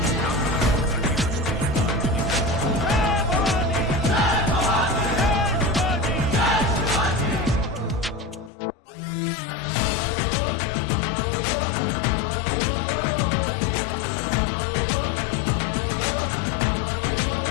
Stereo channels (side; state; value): right; drops out; at 8.5 s